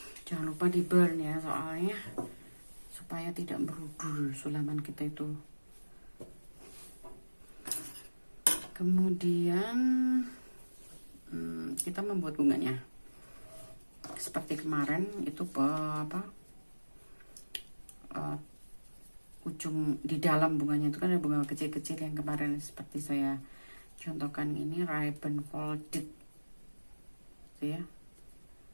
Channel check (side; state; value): both; inverted; correlation -1.00